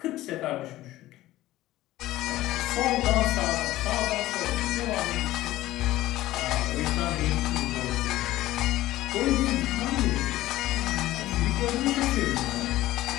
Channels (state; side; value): quieter; right; 15.9 dB